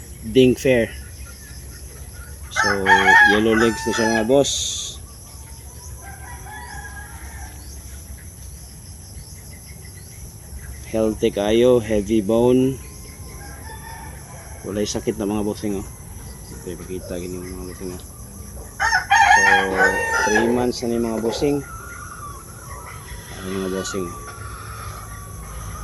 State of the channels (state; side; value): identical; both; correlation 1.00